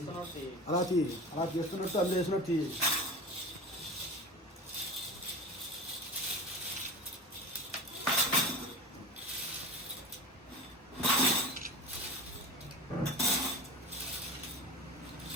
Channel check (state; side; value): normal; both; correlation 0.33